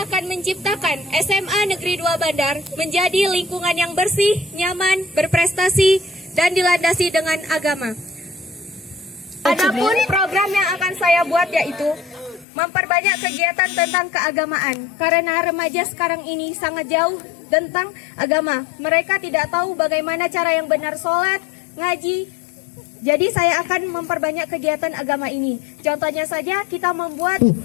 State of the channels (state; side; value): drops out; right; at 12.5 s